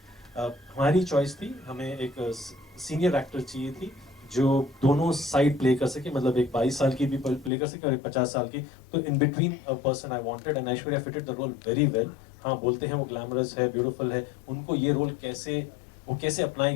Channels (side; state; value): right; drops out; at 7.5 s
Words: हमारी चॉइस थी, हमें एक सीनियर एक्टर चाहिए थी जो दोनों साइड प्ले कर सके, मतलब एक 22 साल की भी प्ले कर सके और एक 50 साल की। तो in between a person I wanted, and Aishwarya fitted the role very well. हाँ, बोलते हैं वो ग्लैमरस है, ब्यूटीफुल है, उनको ये रोल कैसे